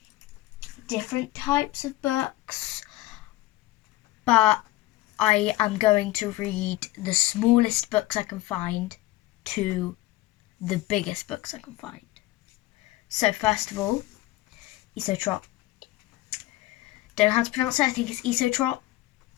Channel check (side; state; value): right; quieter; 17.5 dB